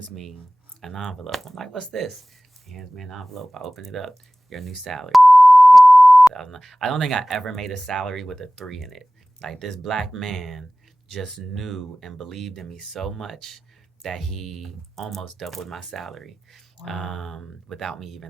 me an envelope. I'm like, "What's this?" He hands me an envelope. I open it up. Your new salary. I don't think I ever made a salary with a 3 in it. Like, this black man just knew and believed in me so much that he almost doubled my salary. Without me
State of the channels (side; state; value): both; normal; correlation 0.98